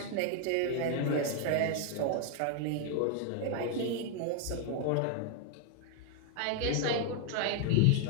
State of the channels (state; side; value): different; both; correlation 0.00